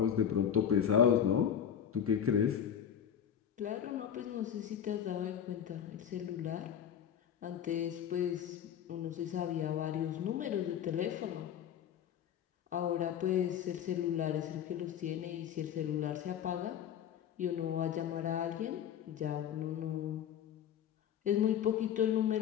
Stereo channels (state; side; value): quieter; right; 9.1 dB